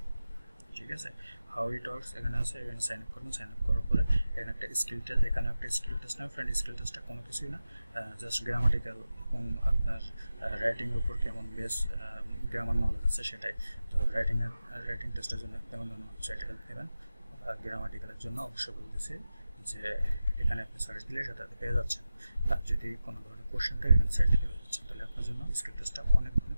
ঠিক আছে, হাউ ইট ওয়ার্কস এখানে আছে, এখানে সাইন আপ করবেন। সাইন আপ করার পরে এখানে একটা স্কিল টেস্ট, এখানে একটা স্কিল টেস্ট না ফ্রেন্ড, স্কিল টেস্টটা কোনো কিছুই না, জাস্ট গ্রামাটিক্যাল এবং আপনার রাইটিংয়ের উপর কেমন বেস গ্রামার নলেজ আছে সেটাই। তো রাইটিং টেস্টের জন্য কেমন ধরনের ওয়েবসাইটে হেল্প নেবেন, আর গ্রামাটিক্যালের জন্য অবশ্যই বলতেছি যে এখানে আপনি সার্চ দিলে সেটাতে পেয়ে যাচ্ছেন। আর যদি কোনো ধরনের কোশ্চেন থাকে এখানে সার্চ দিলে পেয়ে যাচ্ছেন, তাহলে আপনার জন্য স্কিল টেস্টটা অনেক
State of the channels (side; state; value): both; inverted; correlation -0.93